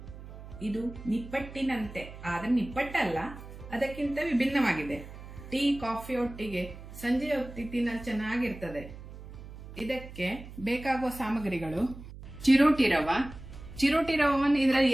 ಇದು ನಿಪ್ಪಟ್ಟಿನಂತೆ, ಆದರೆ ನಿಪ್ಪಟ್ಟಲ್ಲ, ಅದಕ್ಕಿಂತ ವಿಭಿನ್ನವಾಗಿದೆ. ಟೀ ಕಾಫಿ ಒಟ್ಟಿಗೆ ಸಂಜೆ ಹೊತ್ತಿ ತಿನ್ನಲು ಚೆನ್ನಾಗಿರ್ತದೆ. ಇದಕ್ಕೆ ಬೇಕಾಗುವ ಸಾಮಗ್ರಿಗಳು: ಚಿರೋಟಿ ರವವನ್ನು ಇದರಲ್ಲಿ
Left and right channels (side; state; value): right; noise; hum, 14 dB below the sound